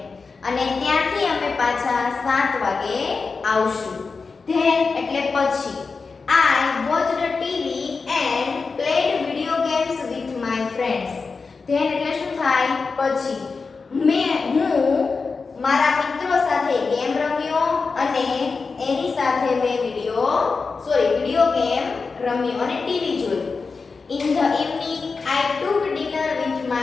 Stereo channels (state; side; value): quieter; right; 4.6 dB